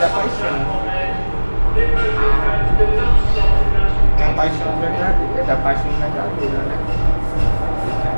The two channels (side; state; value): both; inverted; correlation -1.00